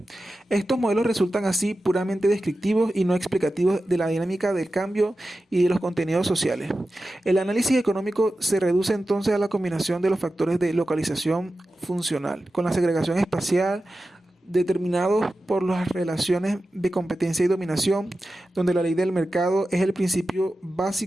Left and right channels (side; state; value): both; normal; correlation 0.93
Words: Estos modelos resultan así puramente descriptivos y no explicativos de la dinámica del cambio y de los contenidos sociales. El análisis económico se reduce entonces a la combinación de los factores de localización funcional con la segregación espacial determinados por las relaciones de competencia y dominación, donde la ley del mercado es el principio